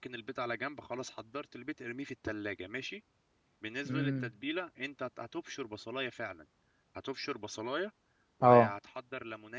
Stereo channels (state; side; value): identical; both; correlation 1.00